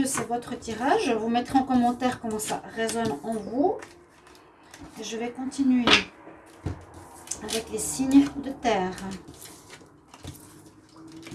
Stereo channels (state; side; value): identical; both; correlation 1.00